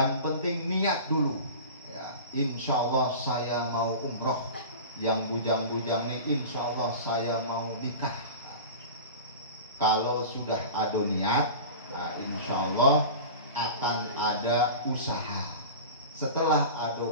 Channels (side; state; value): both; inverted; correlation -0.33